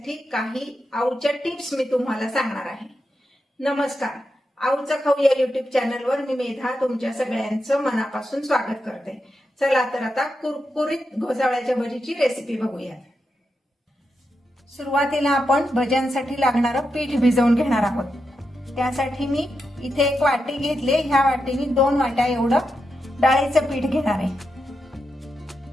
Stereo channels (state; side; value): normal; both; correlation 0.87